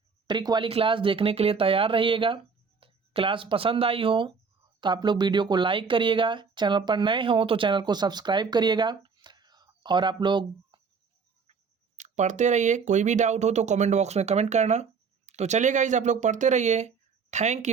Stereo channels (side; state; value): left; quieter; 5.4 dB